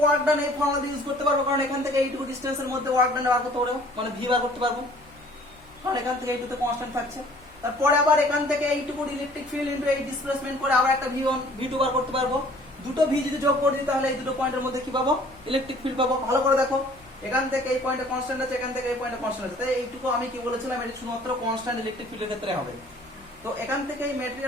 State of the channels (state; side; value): noise; left; hum, 27 dB below the sound